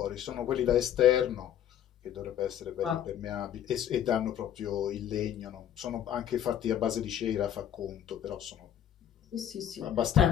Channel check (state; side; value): quieter; right; 10.2 dB